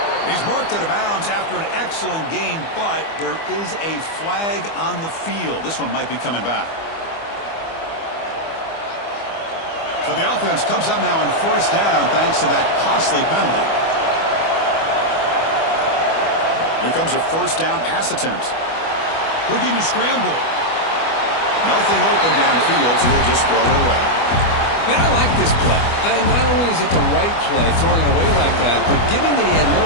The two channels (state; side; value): late; right; 25 ms